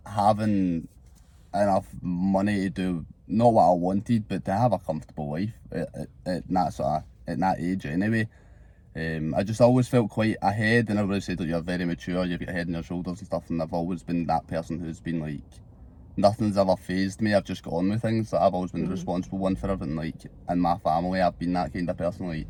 having enough money to do not what I wanted, but to have a comfortable life at that age anyway. I just always felt quite ahead, and everybody said that you're very mature, you've got a head on your shoulders and stuff, and I've always been that person who's been like, nothing's ever phased me. I've just got on with things. Like, I've always been the responsible one for everything. Like, in my family, I've been that kind of person. Like,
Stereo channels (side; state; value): both; identical; correlation 1.00